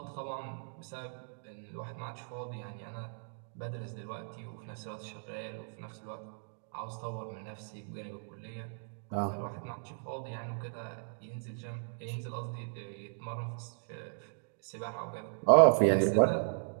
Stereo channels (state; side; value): silent; left; digital silence